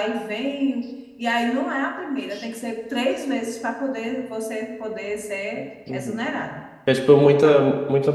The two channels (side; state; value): both; identical; correlation 1.00